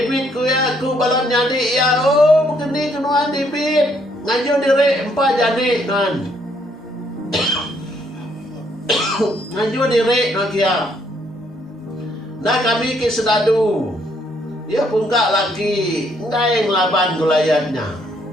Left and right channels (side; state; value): both; normal; correlation 0.69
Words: ku ya ku balam nyadi ya, begini kenuan David ngaju diri 4 jani nan. Ngaju diri nak ya. Nah kami ke sedadu. Ya pungkak lagi, enggak yang laban gulayatnya.